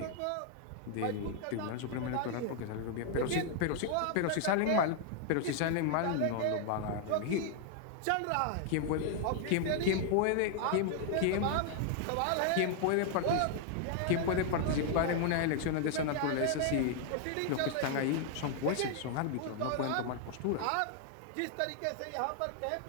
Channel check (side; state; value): both; different; correlation 0.00